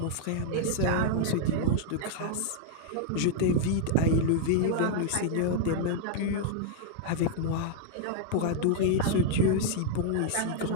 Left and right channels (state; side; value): different; both; correlation -0.01